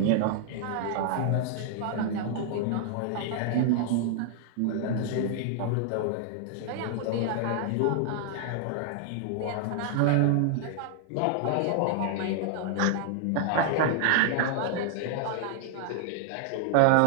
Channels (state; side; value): different; both; correlation 0.00